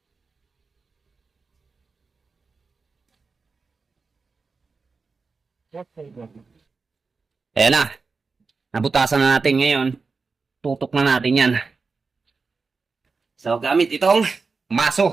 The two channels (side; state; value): left; quieter; 4.5 dB